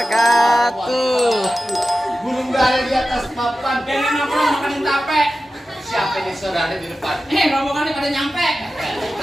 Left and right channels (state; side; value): normal; both; correlation 0.94